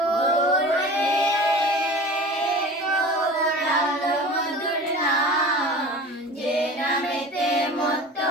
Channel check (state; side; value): normal; both; correlation 0.38